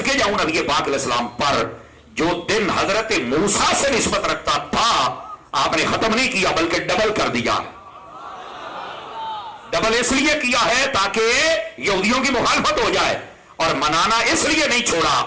جاؤں نبی پاک علیہ السلام پر جو دن حضرت موسیٰ سے نسبت رکھتا تھا آپ نے ختم نہیں کیا بلکہ ڈبل کر دیا. ڈبل اس لیے کیا ہے تاکہ یہودیوں کی مخالفت ہو جائے، اور منانا اس لیے نہیں چھوڑا.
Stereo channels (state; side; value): identical; both; correlation 1.00